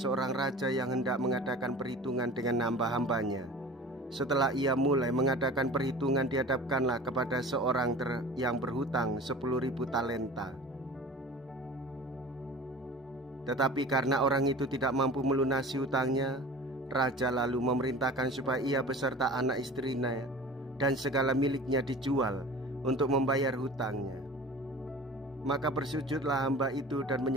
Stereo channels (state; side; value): normal; both; correlation 0.40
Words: raja yang hendak mengadakan perhitungan dengan hamba-hambanya. Setelah ia mulai mengadakan perhitungan, dihadapkanlah kepada seorang yang berhutang 10.000 talenta. Tetapi karena orang itu tidak mampu melunasi hutangnya, raja lalu memerintahkan supaya ia beserta anak istrinya dan segala miliknya dijual untuk membayar hutangnya. Maka bersujudlah hamba itu dan